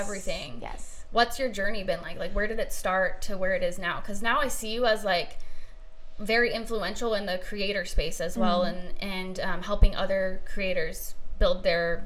Yes. What's your journey been like? Like, where did it start to where it is now? Because now I see you as like very influential in the creator space as well, and helping other creators build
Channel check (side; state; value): both; identical; correlation 1.00